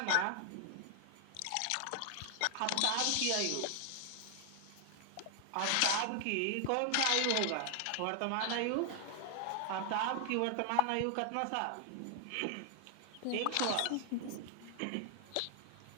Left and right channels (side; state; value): both; different; correlation 0.00